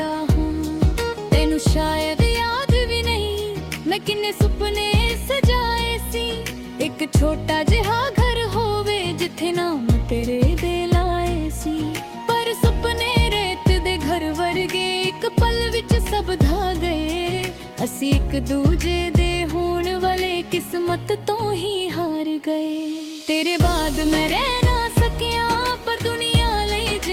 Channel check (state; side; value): identical; both; correlation 1.00